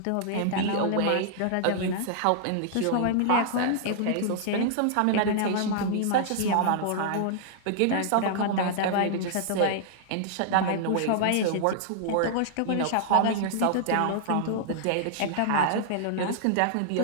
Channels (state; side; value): different; both; correlation -0.01